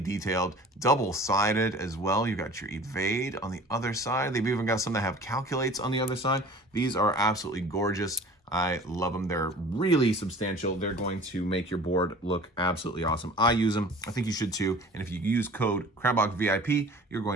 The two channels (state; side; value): normal; both; correlation 0.44